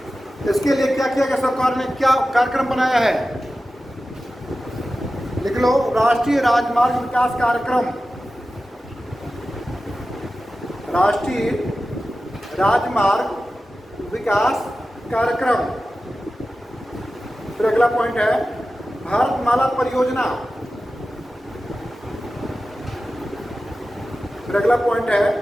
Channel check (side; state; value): both; normal; correlation 0.94